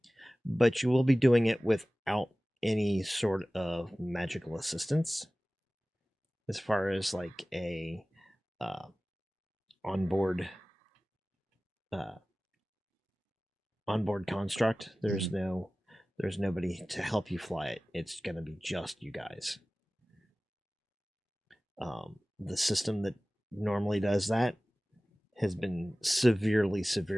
but you will be doing it without any sort of magical assistance, as far as like a onboard construct. There's nobody to help you fly it. It's going to be just you guys. The system that normally does that has been severely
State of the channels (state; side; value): normal; both; correlation 0.97